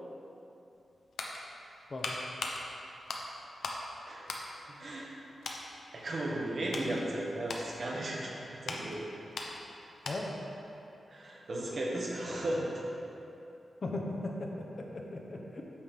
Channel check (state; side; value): normal; both; correlation 0.88